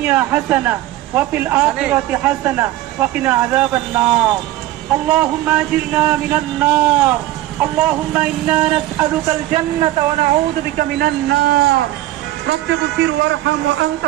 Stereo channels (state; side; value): quieter; left; 15.4 dB